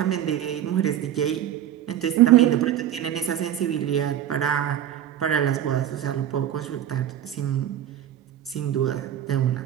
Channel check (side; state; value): left; quieter; 10.9 dB